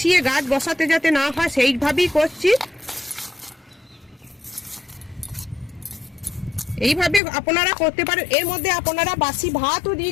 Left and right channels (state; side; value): drops out; right; at 7.2 s